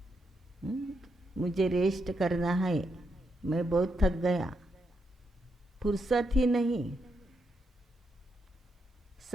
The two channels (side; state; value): both; normal; correlation 0.81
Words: मुझे रेस्ट करना है, मैं बहुत थक गया, फुर्सत ही नहीं।